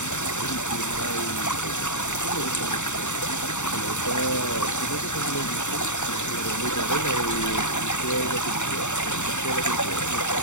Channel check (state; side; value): late; right; 0.84 ms